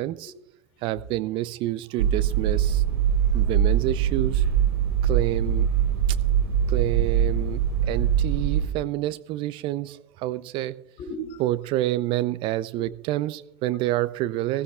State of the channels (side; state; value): left; quieter; 10.0 dB